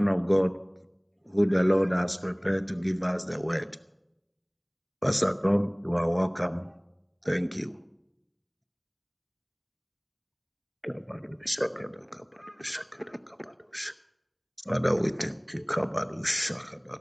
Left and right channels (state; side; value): identical; both; correlation 1.00